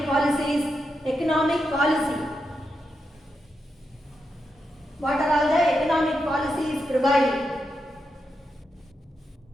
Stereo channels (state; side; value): normal; both; correlation 0.85